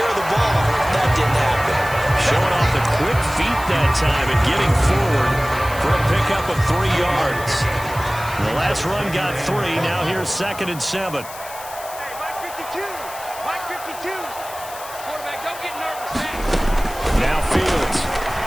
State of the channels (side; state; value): left; noise; hiss, 14 dB below the sound